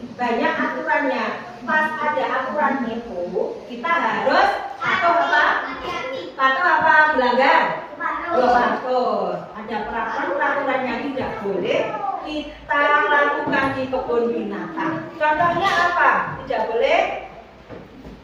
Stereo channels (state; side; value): identical; both; correlation 1.00